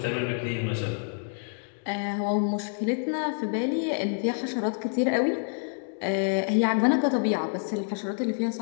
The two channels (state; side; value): silent; right; digital silence